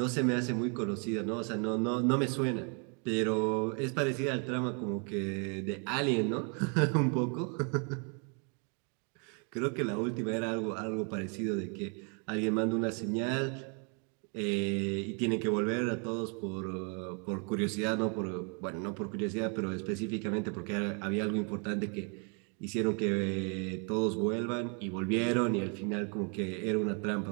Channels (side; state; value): left; quieter; 38.1 dB